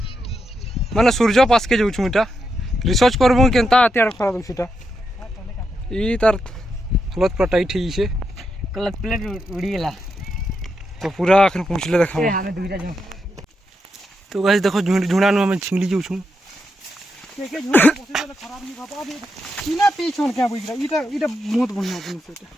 माने सूर्य पास के जाउछु इटा रिसर्च करबो केनता अत्यार खरा दुखीटा ई तार हालत पूरा टाइट ही छे क्लच प्लेट उड़ी गेला तो पूरा अखन पहुंचले देखा हमें दुईटा जो तो गाइस देखो झुंडा नु हमें छिंगली जाउछु के झूठ पोसे खराब नहीं बाबा अभी सीना पीछन क्या बुझरा इटा बहुत बढ़िया अपन से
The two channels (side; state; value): both; normal; correlation 0.84